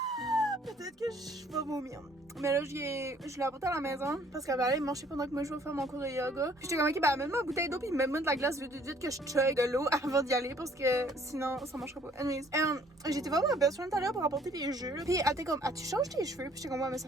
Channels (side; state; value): both; normal; correlation 0.60